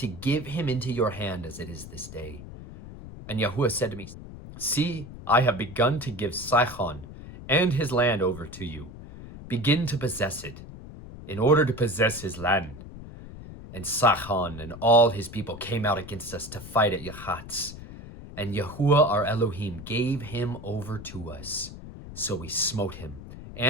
give him into your hand as it is this day. And Yahuwah said to me, see, I have begun to give Sihon and his land over to you. Begin to possess it, in order to possess his land. And Sihon and all his people came out against us to fight at Yahatz. And Yahuwah our Elohim gave him over to us. So we smote him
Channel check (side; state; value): left; noise; rumble, 14 dB below the sound